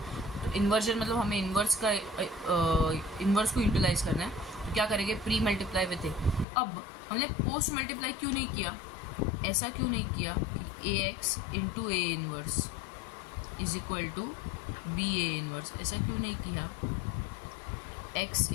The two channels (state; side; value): drops out; right; at 6.5 s